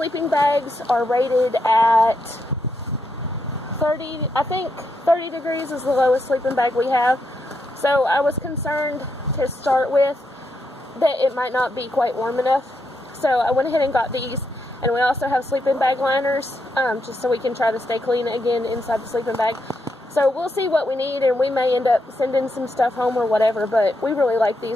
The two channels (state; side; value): normal; both; correlation 0.81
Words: bags are rated at 30, I think 30 degrees is the lowest sleeping bag we have. So I was concerned to start with that it might not be quite warm enough. So I went ahead and got these. And we also have sleeping bag liners, just so we can try to stay clean again inside the sleeping bag. So we'll see what we need, and we may end up sending some stuff home or whatever, but we really like